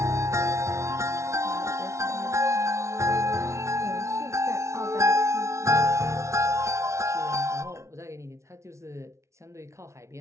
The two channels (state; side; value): late; left; 0.14 ms